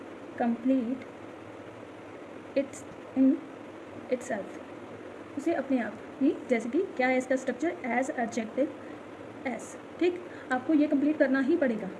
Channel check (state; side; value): identical; both; correlation 1.00